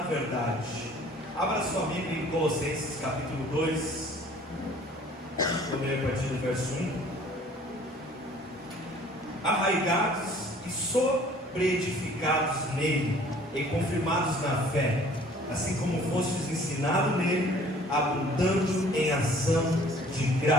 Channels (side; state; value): both; normal; correlation 0.53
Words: verdade. Abra sua Bíblia em Colossenses capítulo 2. Vou ler a partir do verso 1. Arraigados e sobreedificados nele, e confirmados na fé, assim como fostes ensinados nele, abundando em ação de